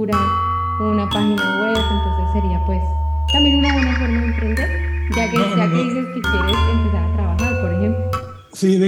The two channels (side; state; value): both; identical; correlation 1.00